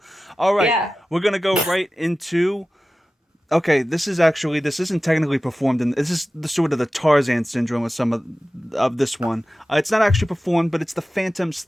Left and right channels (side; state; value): both; normal; correlation 0.95